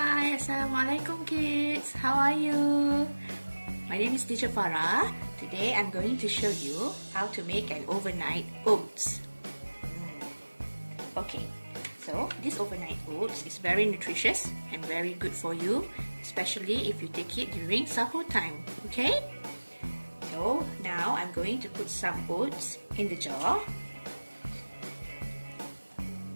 Hi, Assalamualaikum kids. How are you? My name is Teacher Farah. Today I'm going to show you how to make an overnight oats. Okay, so this overnight oats is very nutritious and very good for you, especially if you take it during sahur time. Okay? So now I'm going to put some oats in the jar.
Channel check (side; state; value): both; inverted; correlation -1.00